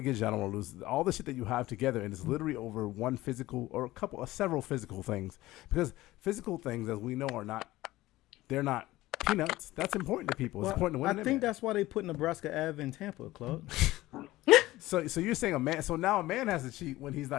I don't want to lose all the shit that you have together. And it's literally over one physical or several physical things. Because physical things, as we know, they're not peanuts. That's important to people. It's important to women. I think that's why they put Nebraska Ave in Tampa, Claude. So you're saying a man? So now a man has to cheat when he's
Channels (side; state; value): right; quieter; 17.3 dB